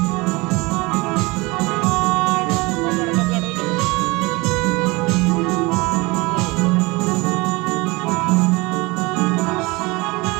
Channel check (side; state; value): left; quieter; 24.2 dB